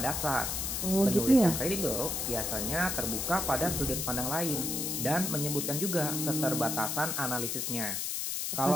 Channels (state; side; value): noise; left; hiss, 1 dB below the sound